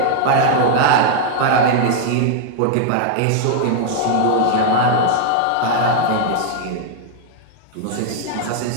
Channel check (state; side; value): different; both; correlation 0.00